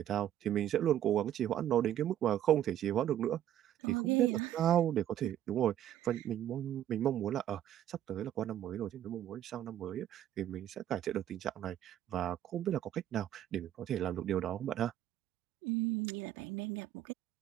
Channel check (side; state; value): left; quieter; 11.5 dB